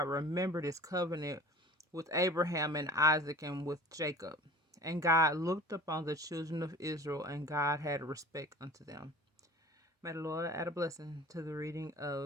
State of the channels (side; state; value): both; normal; correlation 0.43